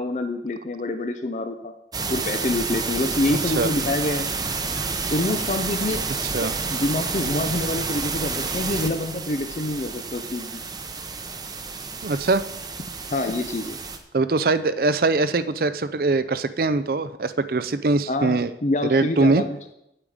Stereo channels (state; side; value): normal; both; correlation 0.34